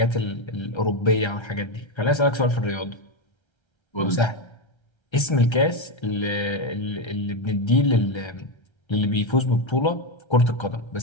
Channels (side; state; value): right; late; 1.3 ms